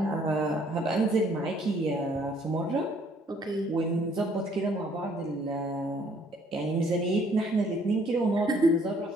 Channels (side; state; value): both; normal; correlation 0.63